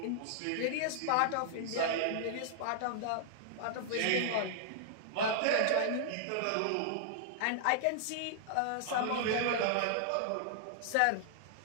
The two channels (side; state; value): both; different; correlation -0.01